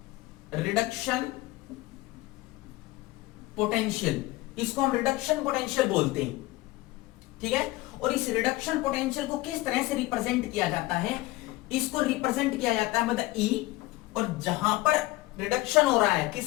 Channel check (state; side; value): quieter; right; 19.3 dB